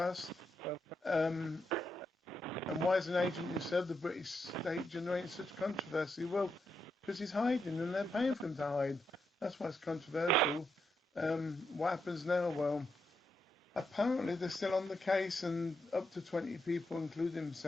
And why is an agent who served the British state generating such controversy? Well, because he's hiding and they're paying for him to hide. That's why it's controversial. What happens now? Well, apparently they're still on the case, and up to 20 people, including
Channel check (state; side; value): normal; both; correlation 0.82